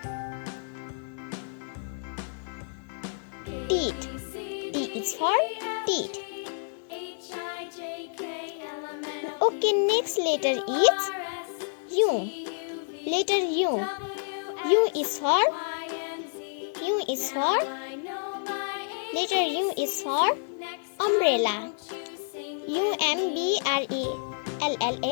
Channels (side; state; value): right; silent; digital silence